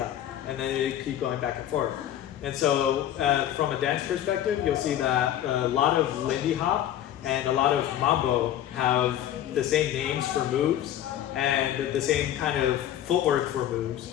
and then they keep going back and forth. And so, from a dance perspective, you'll see that a lot of Lindy Hop and a lot of mambo have the same names for moves and the same kind of footwork for moves.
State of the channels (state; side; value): quieter; right; 11.5 dB